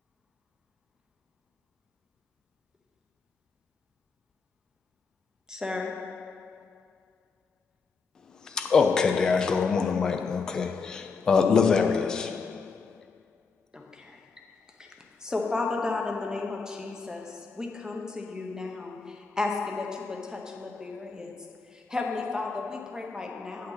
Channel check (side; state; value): right; quieter; 4.8 dB